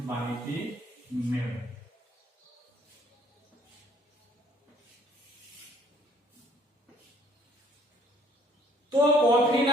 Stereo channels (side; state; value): both; normal; correlation 0.60